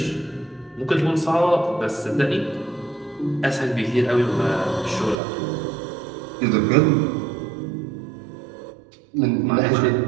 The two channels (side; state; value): left; drops out; at 5.2 s